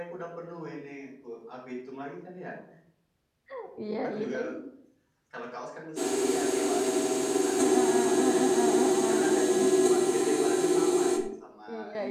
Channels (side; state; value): both; identical; correlation 1.00